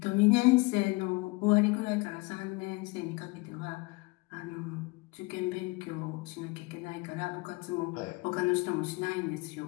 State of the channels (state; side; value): quieter; right; 25.1 dB